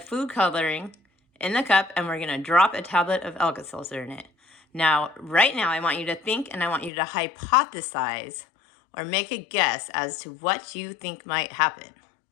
coloring in the cup, and we're going to drop a tablet of Alka-Seltzer in it. Now, right now, I want you to think and I want you to hypothesize or make a guess as to what you think might happen.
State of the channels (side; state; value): right; drops out; at 6.9 s